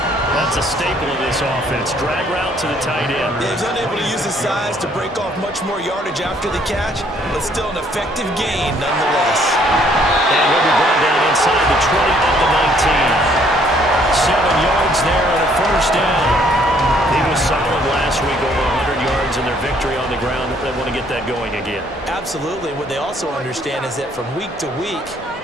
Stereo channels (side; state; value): both; normal; correlation 0.64